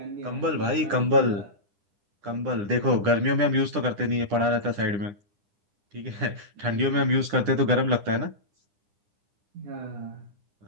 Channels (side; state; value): left; late; 9.9 ms